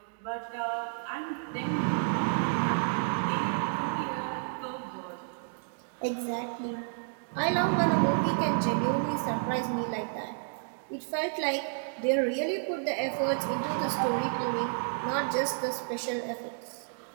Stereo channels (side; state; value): left; silent; digital silence